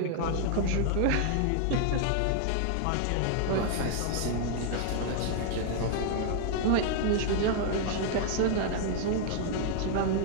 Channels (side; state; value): both; different; correlation 0.00